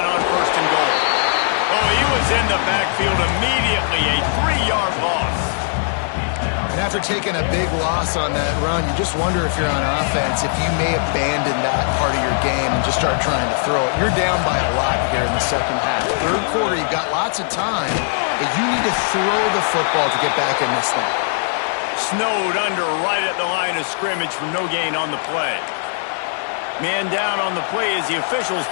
on 1st and goal. Oh, he was in the backfield immediately. A 3-yard loss. And after taking a big loss on that run, you just wonder if you're on offense, if you may abandon that part of your game and just start trying to throw it. You're down by a lot here in the 2nd half. 3rd quarter, you've got lots of time, but you need to throw the football to get back in this thing. Snowed under right at the line of scrimmage for no gain on the play. Man down on the play as the officials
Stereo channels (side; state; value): right; silent; 64 dB below the other